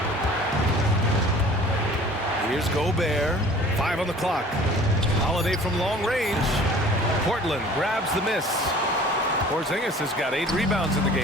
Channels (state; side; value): normal; both; correlation 0.48